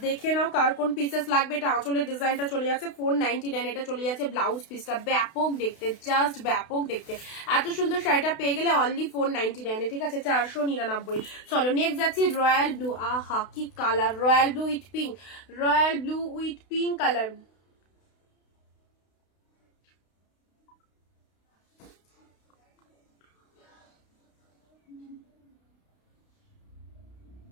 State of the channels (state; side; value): late; right; 32 ms